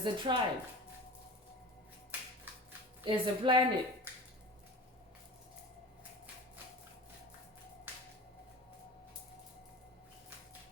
a tribe, as a planet.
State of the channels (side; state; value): both; normal; correlation 0.35